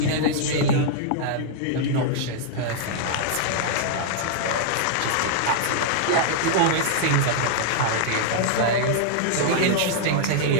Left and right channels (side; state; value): both; different; correlation -0.01